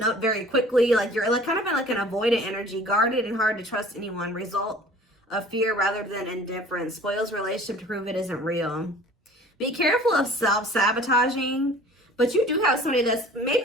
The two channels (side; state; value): both; normal; correlation 0.47